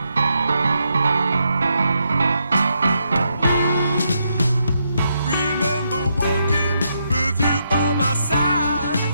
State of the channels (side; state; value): both; inverted; correlation -0.79